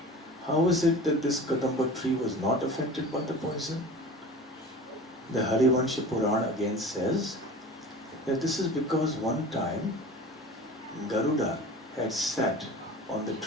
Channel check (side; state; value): both; normal; correlation 0.38